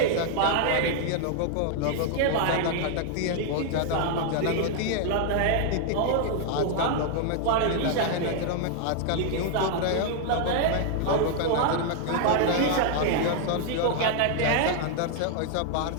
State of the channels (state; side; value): different; both; correlation 0.00